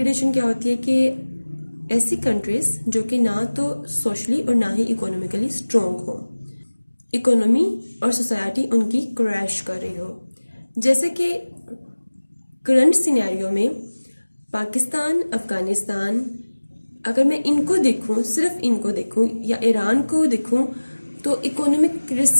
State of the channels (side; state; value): both; inverted; correlation -1.00